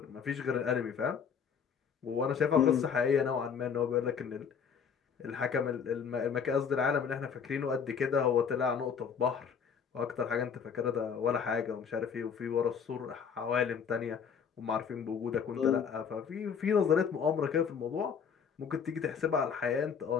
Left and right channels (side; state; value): right; quieter; 6.8 dB